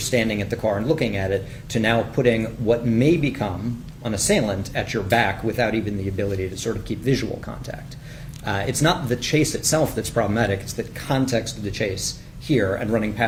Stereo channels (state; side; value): identical; both; correlation 1.00